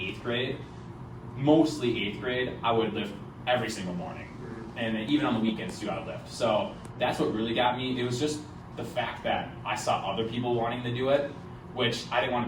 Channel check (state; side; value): identical; both; correlation 1.00